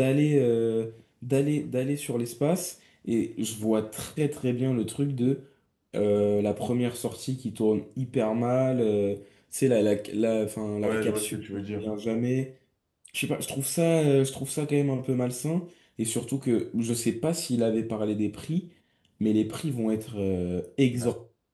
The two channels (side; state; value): both; identical; correlation 1.00